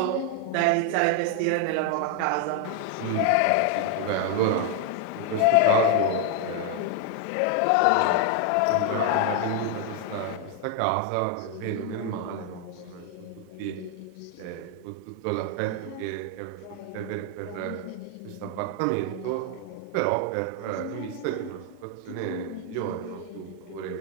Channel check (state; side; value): different; both; correlation 0.01